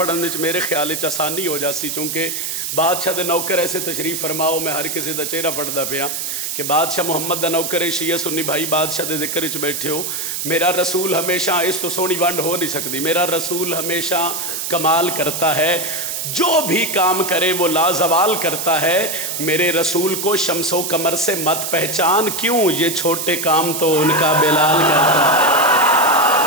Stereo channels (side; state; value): right; noise; hiss, 3 dB below the sound